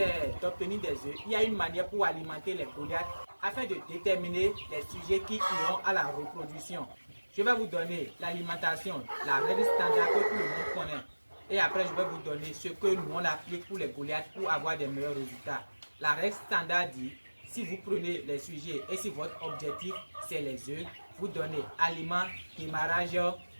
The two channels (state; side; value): inverted; both; correlation -1.00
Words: d'obtenir des œufs, il y a une manière pour alimenter les Goliaths afin de déterminer les sujets qui iront à la reproduction. Je vais vous donner l'alimentation, la règle standard que tout le monde connaît. Et après, je vais vous donner ce que nous on applique pour les Goliaths pour avoir des meilleurs résultats. La règle standard dit, si vous prenez les sujets et si votre objectif c'est les œufs, vous donnez aliment, démarrage,